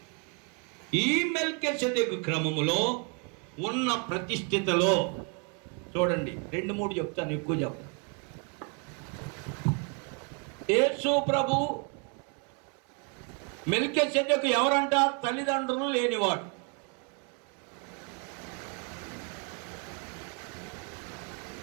ఈ మెల్కీసెదెకు క్రమములో ఉన్న ప్రతిష్ఠితలో చూడండి, 2-3 చెప్తాను, ఎక్కువ చెప్తాను. యేసు ప్రభు మెల్కీసెదెకు ఎవరంట? తల్లిదండ్రులు లేనివాడు.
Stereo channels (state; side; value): quieter; left; 36.3 dB